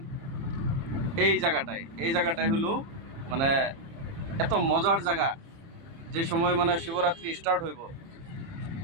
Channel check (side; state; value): left; late; 30 ms